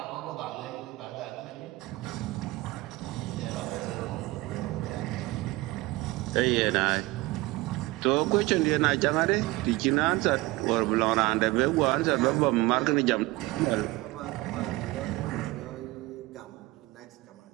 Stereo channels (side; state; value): left; quieter; 20.5 dB